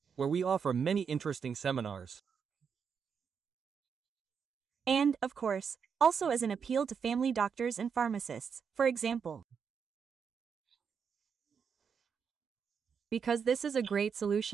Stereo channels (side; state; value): left; quieter; 6.6 dB